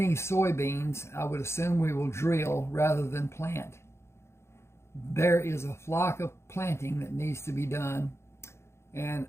soybeans, I would assume we will drill rather than plant. There is a flock of planting that needs to be done, and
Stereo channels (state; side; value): late; right; 0.13 ms